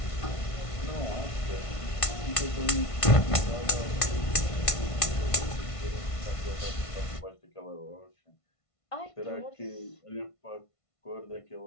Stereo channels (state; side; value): late; right; 1.5 ms